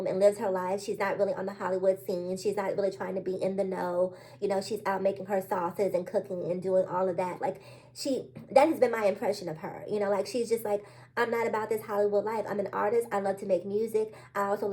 and lives her life. She's not really on the Hollywood scene. She's not really trying to be in the know. You know, she's out making her sauces and cooking and doing all of that. Like, that has been my impression of her. You know, like, she's just like, I'm not about this Hollywood life. I'm an artist. I love to make music. I also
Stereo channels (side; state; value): both; identical; correlation 1.00